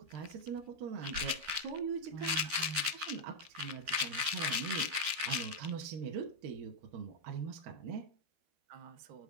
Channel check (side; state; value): left; late; 13 ms